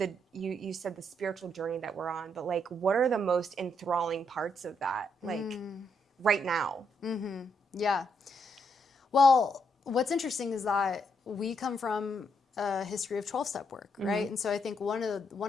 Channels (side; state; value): both; normal; correlation 0.76